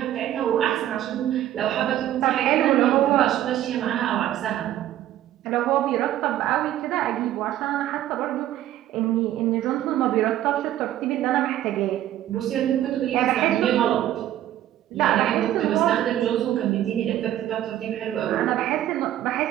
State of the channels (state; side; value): quieter; left; 12.7 dB